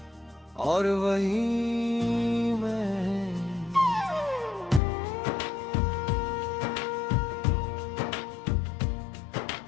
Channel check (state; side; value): drops out; right; at 4.8 s